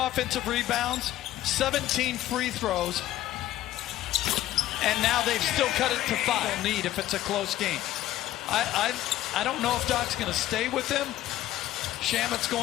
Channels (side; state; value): right; quieter; 14.1 dB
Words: rebounds, 17 free throws, and now they've still cut it to 5. Need if it's a close game. I don't know if Doc's going to stay with him. Shamet's